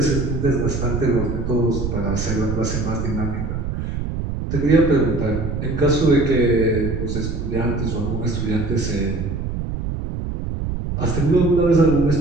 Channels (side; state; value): right; noise; rumble, 4 dB below the sound